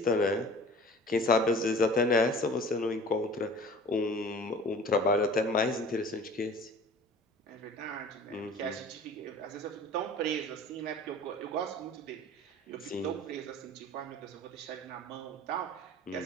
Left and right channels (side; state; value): both; normal; correlation 0.44